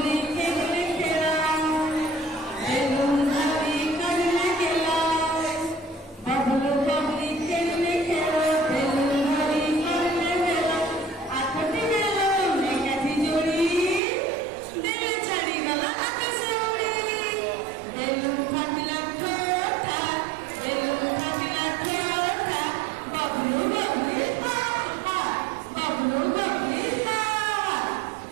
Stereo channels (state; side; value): drops out; left; at 14.0 s